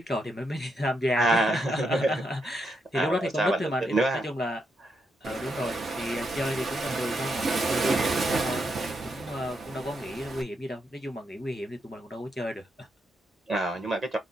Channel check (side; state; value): both; normal; correlation 0.80